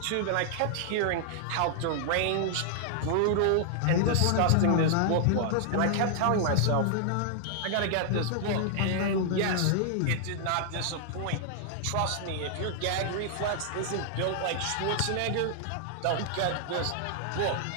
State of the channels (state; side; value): different; both; correlation -0.01